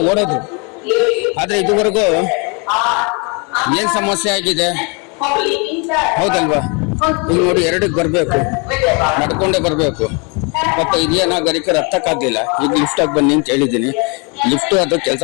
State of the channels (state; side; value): quieter; right; 32.8 dB